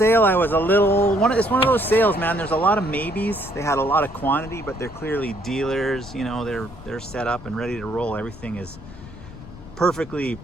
I was a little, it's one of those sales, man. There's a lot of maybes. They had a lot of quantity, but they're clearly dealers. You know, they're set up and ready to roll. Everything is perfectly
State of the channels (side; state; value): left; noise; rumble, 16 dB below the sound